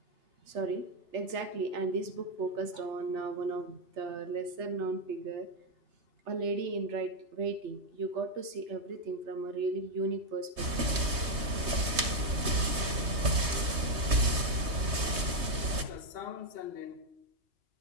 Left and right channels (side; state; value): left; late; 3.2 ms